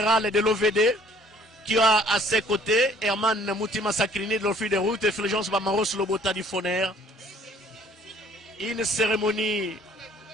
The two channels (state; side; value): normal; both; correlation 0.57